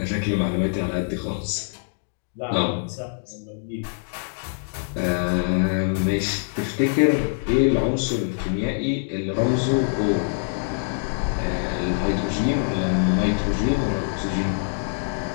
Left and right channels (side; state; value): right; silent; digital silence